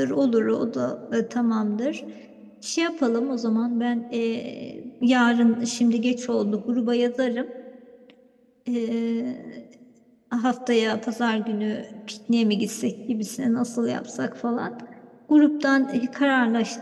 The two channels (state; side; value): identical; both; correlation 1.00